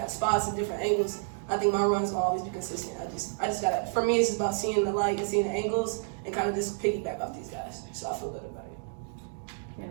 spots and different angles, I think my runs will always be consistent. I just gotta. For me, it's just about seeing the light and seeing the angles and kind of just piggyback off these guys. So I feel good about it.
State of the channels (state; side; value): silent; left; digital silence